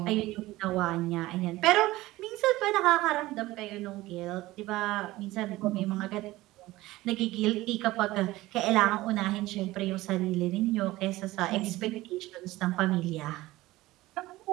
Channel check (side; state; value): left; quieter; 18.0 dB